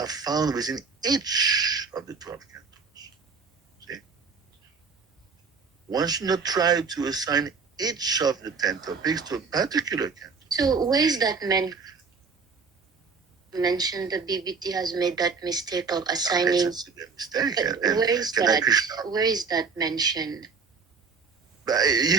found within each of the 12 cantos. See? one should not try to assign each of the 10 topics to a particular canto. So where is that mentioned the BBT has made that mistake of assigning? It's a mistake. But where is that? Where is that mentioned? But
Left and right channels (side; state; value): left; quieter; 5.1 dB